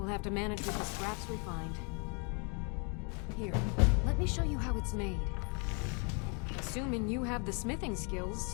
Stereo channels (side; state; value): right; quieter; 35.5 dB